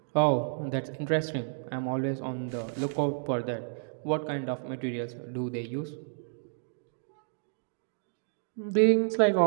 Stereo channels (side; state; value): left; silent; digital silence